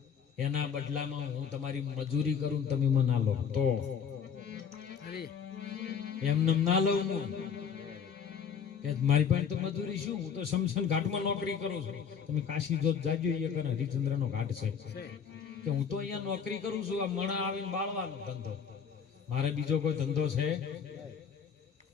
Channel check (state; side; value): quieter; right; 7.0 dB